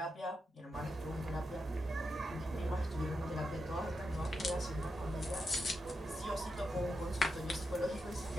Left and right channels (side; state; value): both; normal; correlation 0.86